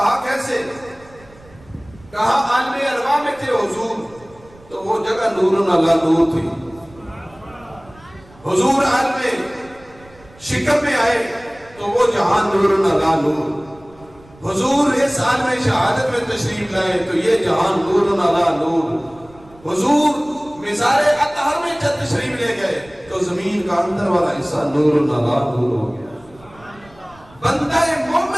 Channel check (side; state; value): right; noise; rumble, 25 dB below the sound